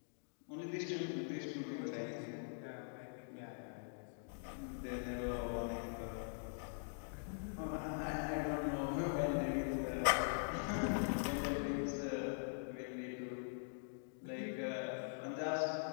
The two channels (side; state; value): right; silent; digital silence